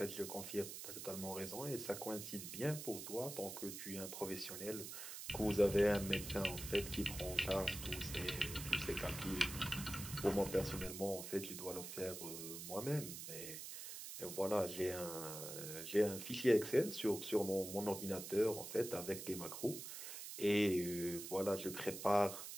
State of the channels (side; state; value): right; noise; hiss, 8 dB below the sound